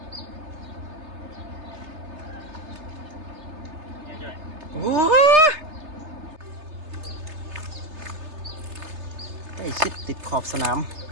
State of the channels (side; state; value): left; late; 3.3 ms